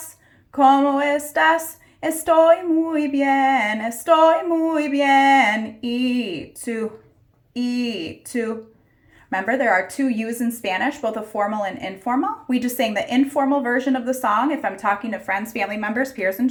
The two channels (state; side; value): identical; both; correlation 1.00